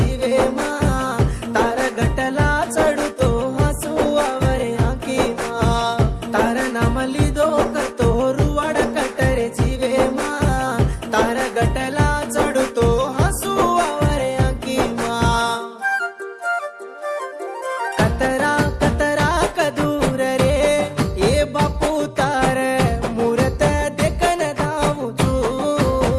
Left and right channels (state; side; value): identical; both; correlation 1.00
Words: मा तार गटला चढतो हसू आवरे आखी मा तार नाम लिदो कतो रुवाडा कटरे जीवे मा तार गटला चढतो हसू आवरे आखी मा कतरा कतरा कदूर रे ये बापू तार मूरत देखन धावू तू